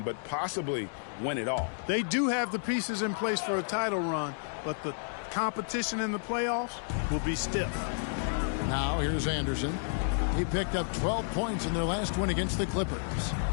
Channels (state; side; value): silent; right; digital silence